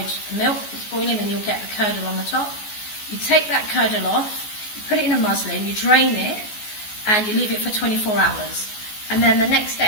the milk that's boiling, and you'll get the curdle on the top. You take that curdle off, you put it in a muslin, you drain it, and you leave it for 24 hours. And then the next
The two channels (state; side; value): late; right; 14 ms